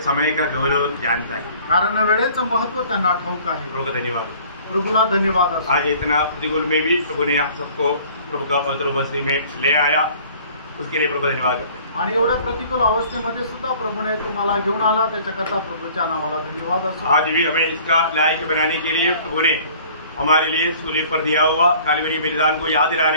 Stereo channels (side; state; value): both; inverted; correlation -0.51